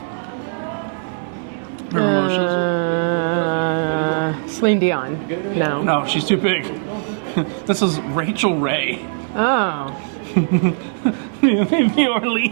Celine Dion. No. No, she's too big. This is Rachel Ray. Oh. The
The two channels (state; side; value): silent; left; 66 dB below the other